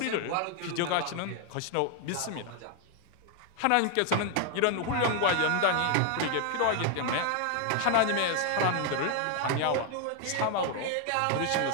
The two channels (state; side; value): different; both; correlation 0.01